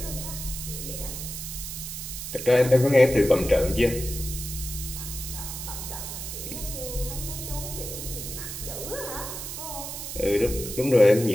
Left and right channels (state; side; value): noise; right; hiss, 7 dB below the sound